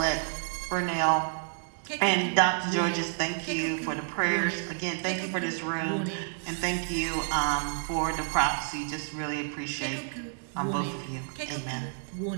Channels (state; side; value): silent; left; 58 dB below the other